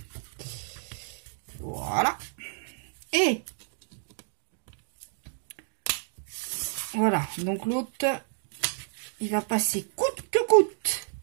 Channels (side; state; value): left; silent; digital silence